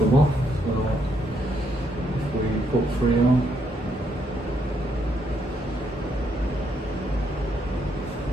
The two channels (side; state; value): both; normal; correlation 0.75